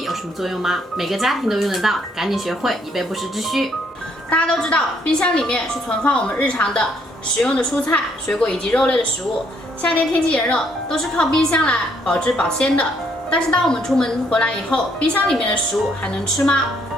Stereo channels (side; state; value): both; normal; correlation 0.69